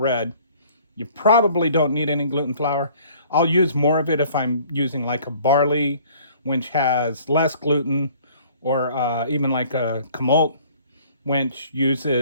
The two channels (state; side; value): inverted; both; correlation -0.54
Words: you probably don't need any gluten flour. I'll use more of it if I'm using like a barley, which has less gluten, or even like a kamalt, which